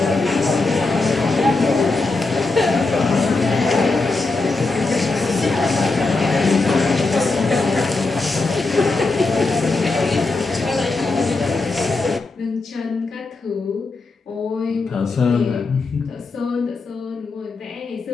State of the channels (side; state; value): right; quieter; 3.6 dB